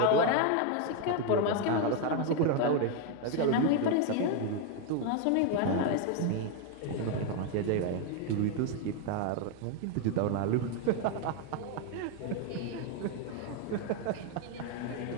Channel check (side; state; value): both; different; correlation 0.01